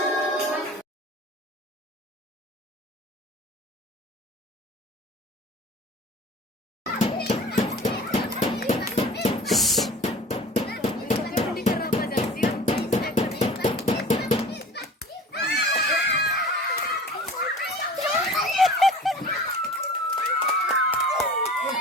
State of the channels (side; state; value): both; normal; correlation 0.41